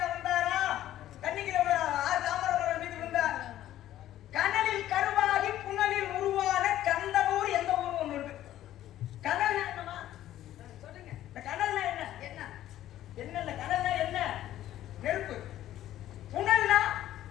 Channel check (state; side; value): quieter; right; 13.0 dB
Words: வந்தாரா, தண்ணிக்குள்ள 6 தாமரை மலர் மீது விழுந்தார். கனலில் கருவாகி புனலில் உருவான கந்தனூர் எந்த ஊர் ஒண்ணு இருக்கு. கனல்னா என்னமா சொல்லுங்க. இந்த கனல்னா என்ன? என்ன இல்ல கனல்னா என்ன? நெருப்பு. புனல்னா